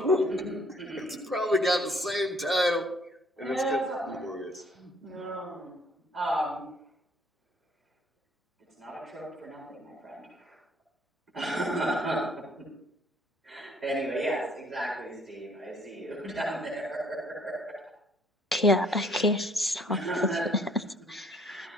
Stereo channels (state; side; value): normal; both; correlation 0.61